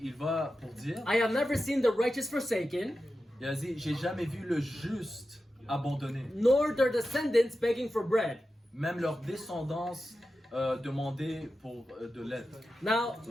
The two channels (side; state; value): both; normal; correlation 0.92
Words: va pour dire, "I have never seen the righteous forsaken, il a dit, j'ai jamais vu le juste abandonné. nor their descendants begging for bread." Même leur descendance demander pour de l'aide. Now,